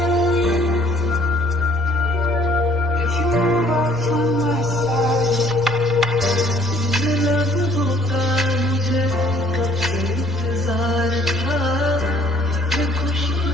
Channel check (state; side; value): normal; both; correlation 0.60